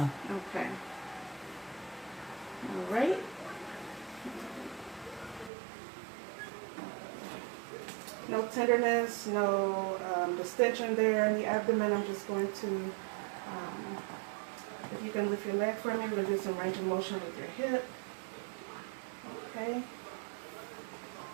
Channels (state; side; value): drops out; left; at 5.5 s